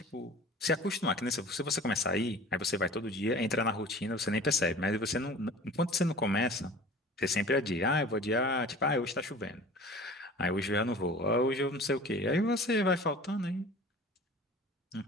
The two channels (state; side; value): normal; both; correlation 0.42